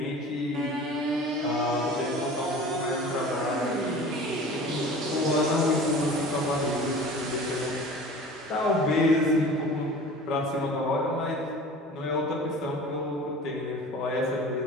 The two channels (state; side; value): normal; both; correlation 0.41